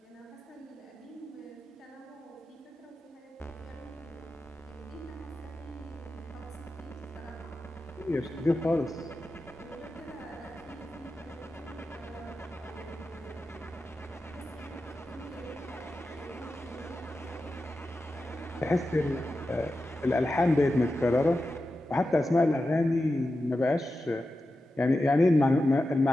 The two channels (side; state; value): both; normal; correlation 0.91